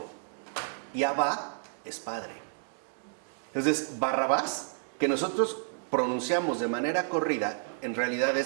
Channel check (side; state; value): left; silent; 57 dB below the other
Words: y Abá es padre. Entonces, Barrabás, que nosotros pronunciamos de manera corrida, en realidad